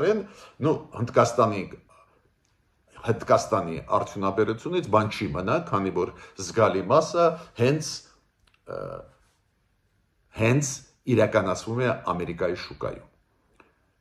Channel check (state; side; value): identical; both; correlation 1.00